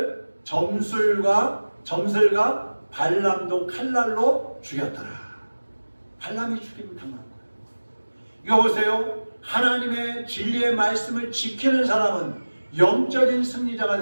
점슬과 발람도 칼날로 죽였더라. 발람이 죽임을 당한 거예요. 이거 보세요. 하나님의 진리의 말씀을 지키는 사람은 영적인 승리자가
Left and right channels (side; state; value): both; inverted; correlation -1.00